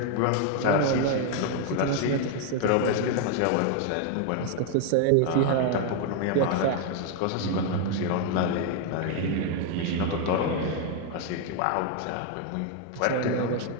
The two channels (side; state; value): both; different; correlation 0.01